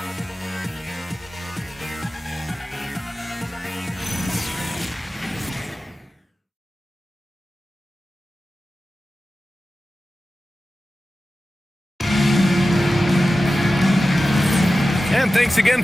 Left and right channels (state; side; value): normal; both; correlation 0.94